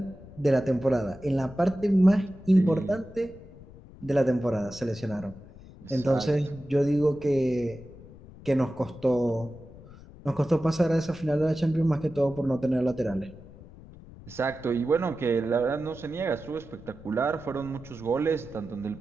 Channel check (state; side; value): noise; left; rumble, 19 dB below the sound